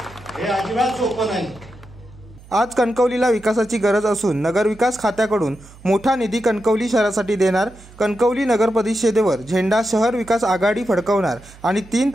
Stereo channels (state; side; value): noise; right; hum, 22 dB below the sound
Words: हे अजिबात सोपं नाही। आज कणकवलीला विकासाची गरज असून नगरविकास खात्याकडून मोठा निधी कणकवली शहरासाठी देणार। कणकवली नगर परिषदेवर झेंडा शहर विकास आघाडी फडकवणार आणि 3